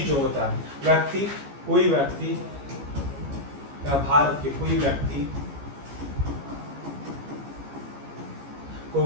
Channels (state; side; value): late; left; 15 ms